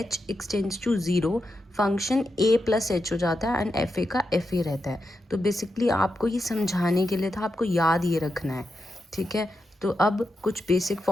extends to 0 function a plus h हो जाता है एंड एफ ए का एफ ए रहता है. तो बेसिकली आपको ये समझाने के लिए था, आपको याद ये रखना है. ठीक है. तो अब कुछ बेसिक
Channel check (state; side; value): normal; both; correlation 0.87